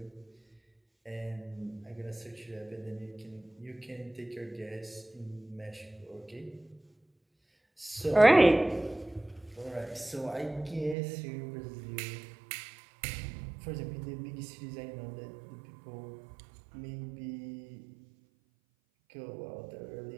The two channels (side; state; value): left; drops out; at 11.0 s